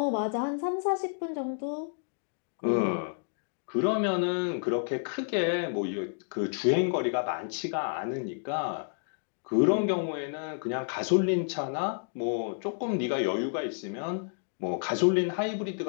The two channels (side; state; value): right; silent; digital silence